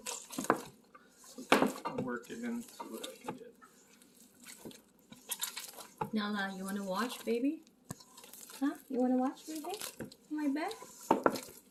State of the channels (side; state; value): both; identical; correlation 1.00